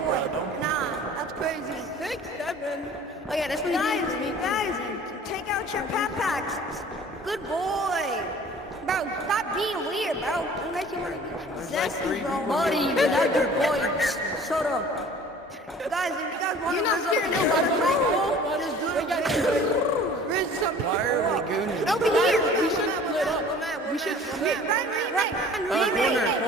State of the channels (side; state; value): both; normal; correlation 0.47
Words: bro. Don't. Nah, that's crazy. 6, 7. Oh yeah, that's when guys, take out your packs. Good boy. Bro, stop being weird, bro. Unless you want to be There's like 3 zesty, bro. people. Buddy, here. that's your boy. Shut up. Guys, if you guys want to You're not scared of nobody. Just do it. Riz something. Why are we gooning? Over here. We should split up. We should split. Right.